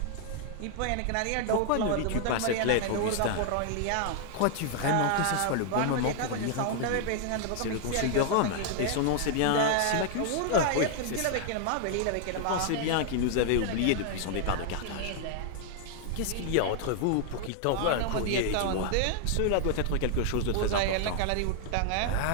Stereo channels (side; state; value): both; different; correlation 0.00